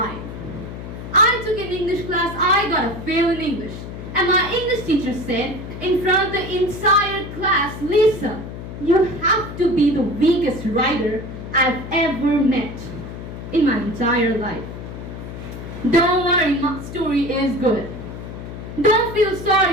I took an English class, I got a fail in English. And my English teacher said, in front of the entire class, Lisa, you have to be the weakest writer I've ever met in my entire life. Don't worry, my story is good. Don't feel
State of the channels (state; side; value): noise; left; hum, 10 dB below the sound